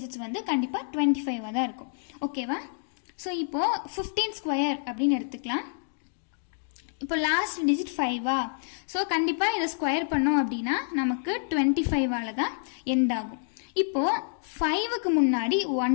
வந்து கண்டிப்பாக 25 தான் இருக்கும். ஓகேவா? ஸோ இப்போது 15 ஸ்கொயர் அப்படின்னு எடுத்துக்கலாம். இப்போ லாஸ்ட் டிஜிட் 5ஆ, ஸோ கண்டிப்பாக இதை ஸ்கொயர் பண்ணோம் அப்படின்னா நமக்கு 25ஆல் தான் எண்ட் ஆகும். இப்போது 5க்கு முன்னாடி 1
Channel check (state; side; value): silent; right; digital silence